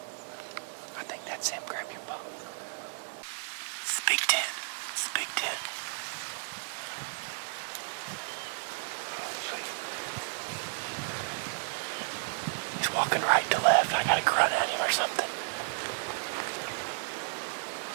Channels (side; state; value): left; silent; digital silence